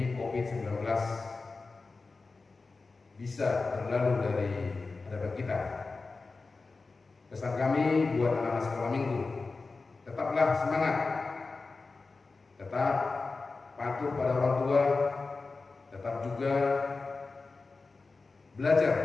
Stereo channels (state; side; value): quieter; right; 3.9 dB